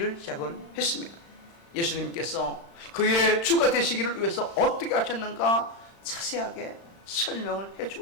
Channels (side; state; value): right; late; 35 ms